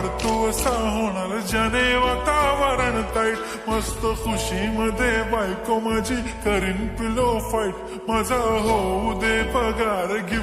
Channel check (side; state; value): both; identical; correlation 1.00